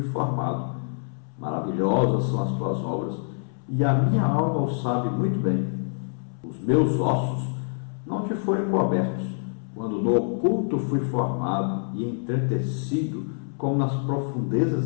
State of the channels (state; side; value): silent; right; 61 dB below the other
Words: formado. Maravilhosas são as Tuas obras, e a minha alma o sabe muito bem. Os meus ossos não Te foram cobertos, quando no oculto fui formado e entretecido como nas